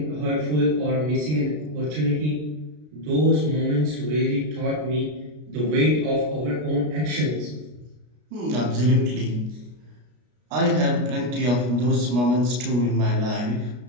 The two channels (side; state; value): left; late; 33 ms